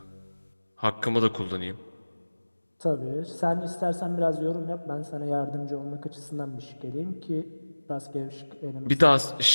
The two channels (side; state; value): both; inverted; correlation -1.00